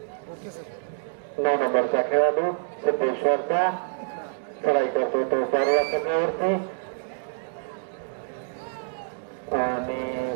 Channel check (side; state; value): left; silent; digital silence